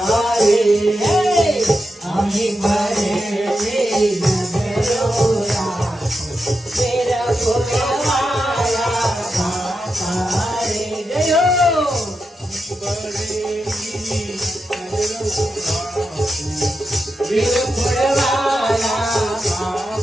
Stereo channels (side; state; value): both; normal; correlation 0.87